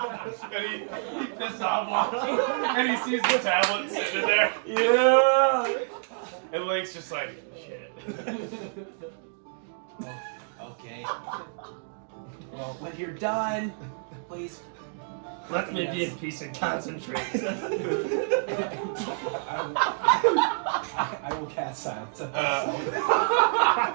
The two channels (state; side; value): silent; left; digital silence